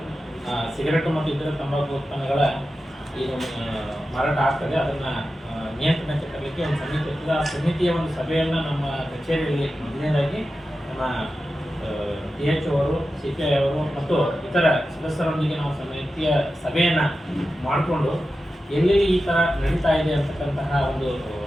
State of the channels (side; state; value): both; normal; correlation 0.92